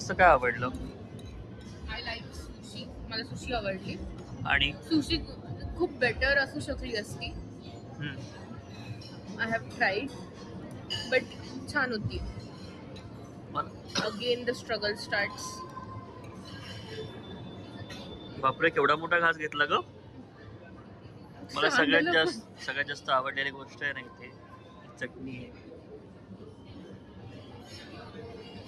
काय आवडलं? I like sushi. मला सुशी आवडली. आणि सुशी खूप बेटर असू शकली असती. आय हॅव ट्राईड बट छान होती. Again the struggle starts. बापरे, केवढा मोठा घास घेतला ग. मला सगळ्यात जास्त आवडलेली गोष्ट आहे ना इथे चटणी आहे.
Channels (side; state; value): both; identical; correlation 1.00